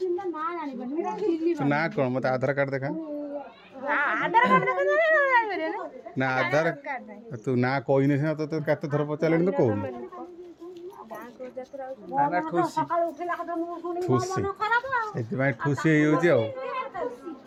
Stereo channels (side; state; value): both; identical; correlation 1.00